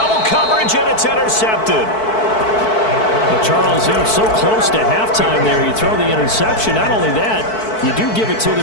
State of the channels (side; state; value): right; late; 4.6 ms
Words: coverage, and it's intercepted. Well, Charles, they're so close to halftime there. You throw the interception. Not only that, you do give it to